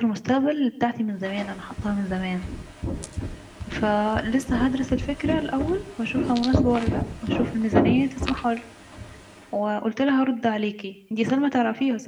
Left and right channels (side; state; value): both; identical; correlation 1.00